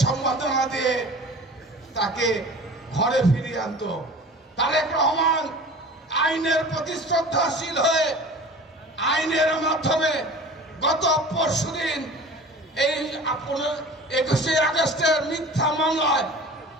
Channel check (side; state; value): both; normal; correlation 0.40